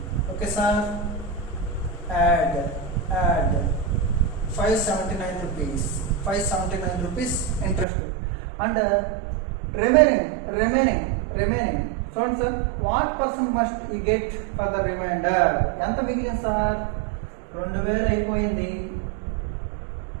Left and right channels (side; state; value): left; drops out; at 7.9 s